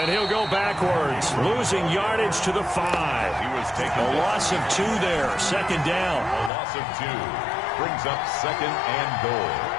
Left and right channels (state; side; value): drops out; right; at 6.5 s